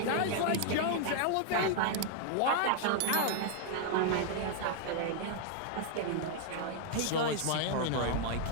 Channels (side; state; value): both; different; correlation -0.01